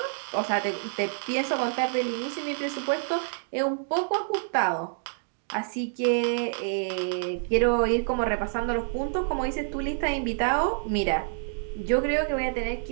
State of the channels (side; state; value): left; silent; digital silence